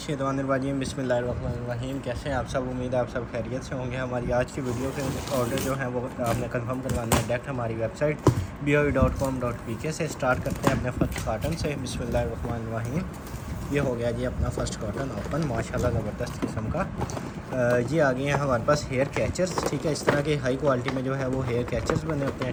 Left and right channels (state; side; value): identical; both; correlation 1.00